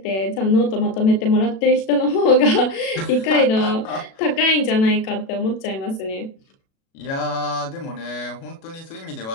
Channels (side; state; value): right; late; 37 ms